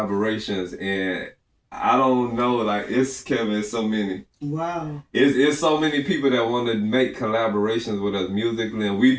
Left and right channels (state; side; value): identical; both; correlation 1.00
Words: and I don't know, like it's so many. Wow. It's so many people that want to make collaborations with us musically, and we